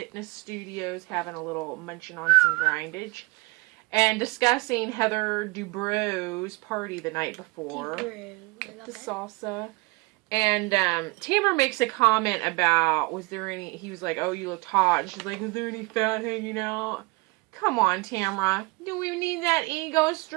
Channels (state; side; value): quieter; left; 25.3 dB